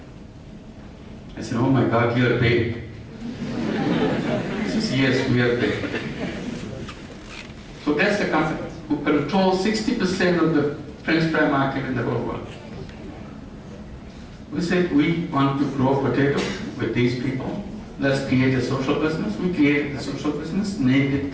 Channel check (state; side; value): identical; both; correlation 1.00